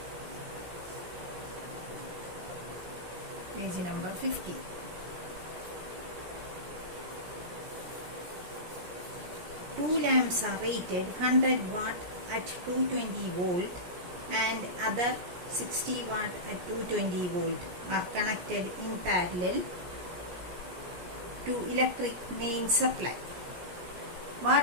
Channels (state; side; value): late; left; 17 ms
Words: page number 50. Two lamps are rated 100 watt at 220 volt and other 60 watt at 220 volt are connected in parallel to electric main supply. What